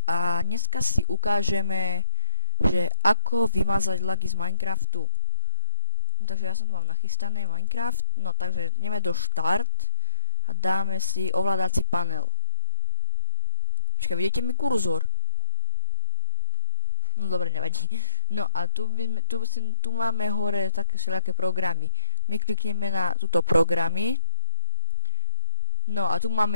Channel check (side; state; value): both; inverted; correlation -1.00